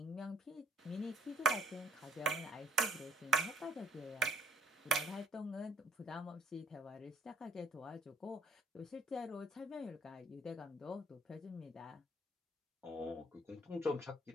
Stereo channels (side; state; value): both; normal; correlation 0.58